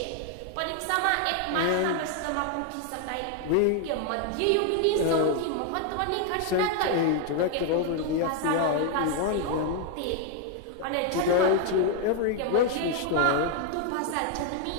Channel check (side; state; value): both; different; correlation 0.01